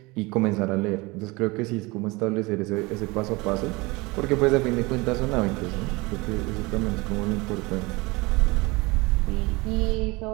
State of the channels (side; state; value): left; quieter; 24.2 dB